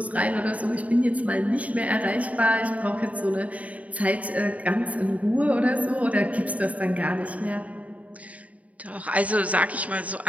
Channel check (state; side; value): late; left; 0.069 ms